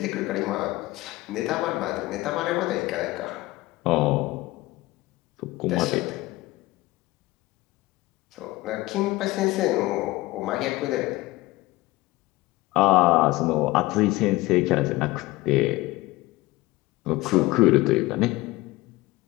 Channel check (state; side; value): quieter; right; 19.7 dB